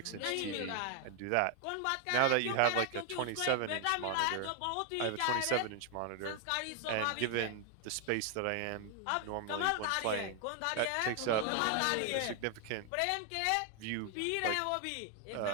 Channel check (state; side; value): different; both; correlation 0.00